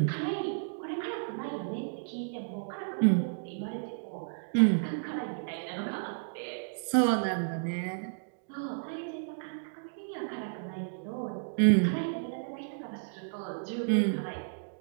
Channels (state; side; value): silent; left; digital silence